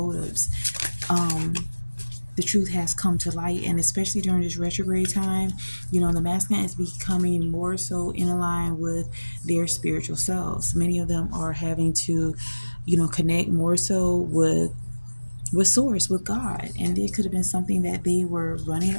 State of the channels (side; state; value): both; inverted; correlation -1.00